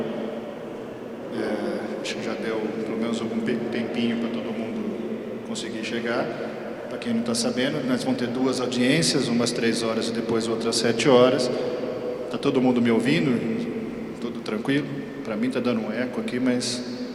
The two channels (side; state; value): both; identical; correlation 1.00